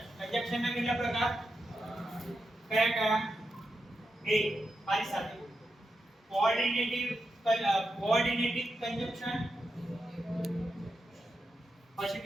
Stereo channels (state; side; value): normal; both; correlation 0.87